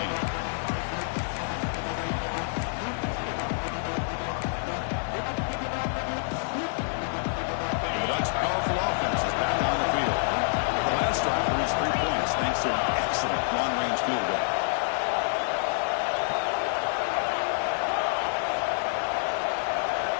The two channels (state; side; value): silent; right; 60 dB below the other